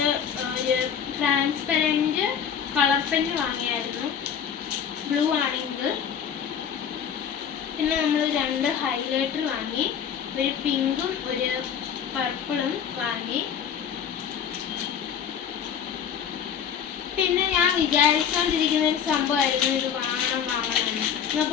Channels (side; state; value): right; quieter; 8.1 dB